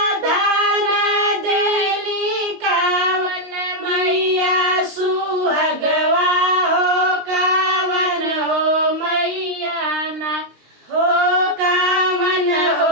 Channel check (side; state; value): left; late; 19 ms